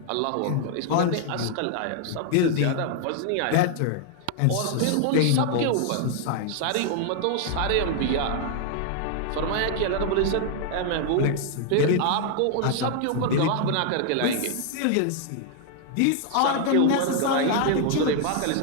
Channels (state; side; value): different; both; correlation 0.00